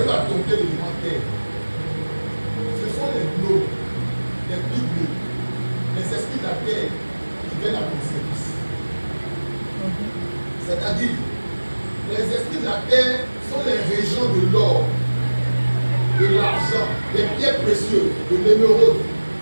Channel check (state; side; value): inverted; both; correlation -1.00